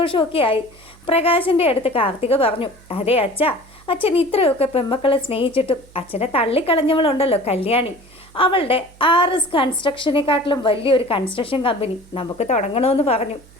ആയി. പ്രകാശിൻ്റെ അടുത്ത് കാർത്തിക പറഞ്ഞു, അതെ അച്ഛൻ ഇത്രയൊക്കെ പെമ്മക്കളെ സ്നേഹിച്ചിട്ടും അച്ഛനെ തള്ളിക്കളഞ്ഞവളുണ്ടല്ലോ കല്യാണി, അവളുടെ RS കൺസ്ട്രക്ഷനെക്കാട്ടിലും വലിയൊരു കൺസ്ട്രക്ഷൻ കമ്പനി നമുക്ക് തുടങ്ങണമെന്ന് പറഞ്ഞു.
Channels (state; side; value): noise; right; hum, 25 dB below the sound